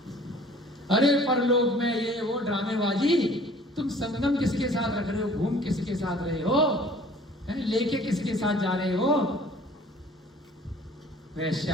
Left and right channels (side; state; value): both; normal; correlation 0.51